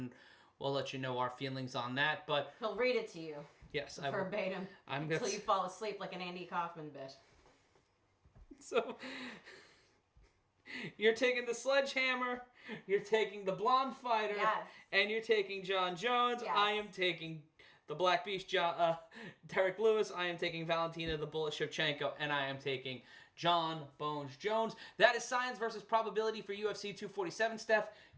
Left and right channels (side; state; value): both; identical; correlation 1.00